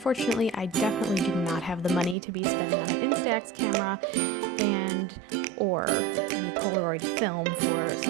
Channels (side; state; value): left; drops out; at 2.1 s